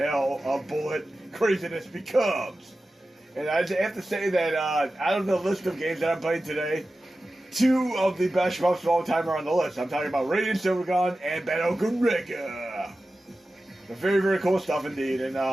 of bullet craziness becomes. And I have to say that out of the list of games that I'm playing today, 2 of the best shmups of all time are on the list. I'm talking about Radiant Silvergun and Battle Garegga. Very cool stuff indeed. And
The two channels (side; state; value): both; normal; correlation 0.94